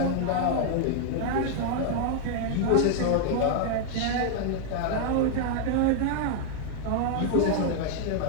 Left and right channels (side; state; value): both; different; correlation 0.00